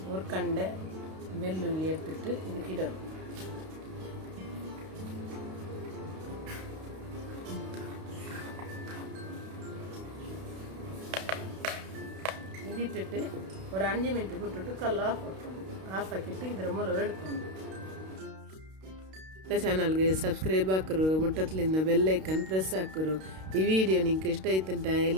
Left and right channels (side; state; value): left; late; 32 ms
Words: ஒரு கண்டை வெள்ளுள்ளி எடுத்துட்டு இதுக்கு இடணும். ಇದಿಟ್ಟಿಟ್ಟು ஒரு 5 ಮಿನಿಟ್ ಬಿಟ್ಟುಟ್ಟು ಕಲ್ಲು ಆಫ್ ಹಾಕಿಟ್ಟು ಇದರ ಮೂಲಕ ಎಡ್ಕೊಂಡು ಚಾನಲ್ಗೆ ಸಬ್ಸ್ಕ್ರೈಬ್ ಹಾಕರು, ಮುಟ್ಟತ್ಲಿಂದ ಬೆಲ್ ಐಕನ್ ಪ್ರೆಸ್ ಹಾಕರು. ಈ ವಿಡಿಯೋ ನಿಂಗೆ ಇಷ್ಟ ಆಯ್ತಂಟ